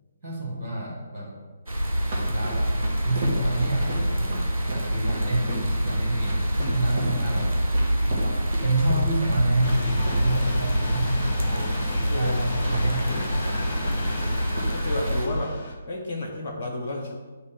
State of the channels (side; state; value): both; inverted; correlation -0.88